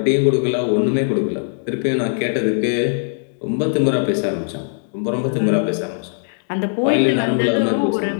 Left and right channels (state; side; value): silent; right; digital silence